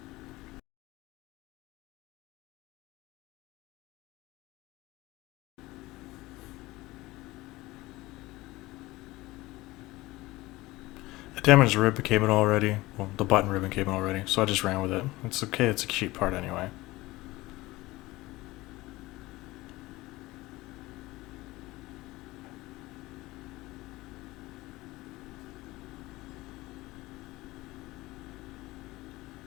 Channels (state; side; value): quieter; right; 19.6 dB